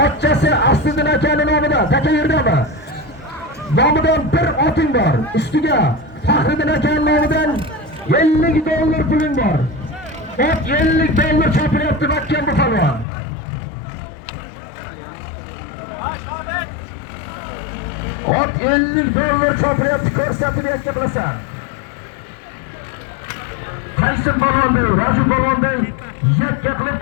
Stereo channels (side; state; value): right; drops out; at 13.1 s